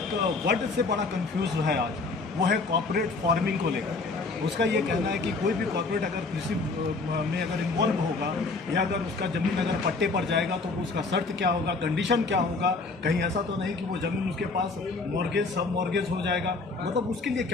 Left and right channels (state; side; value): quieter; right; 3.8 dB